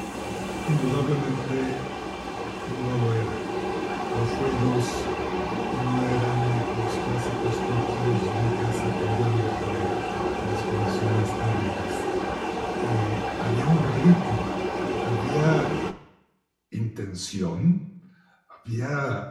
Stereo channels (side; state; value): both; identical; correlation 1.00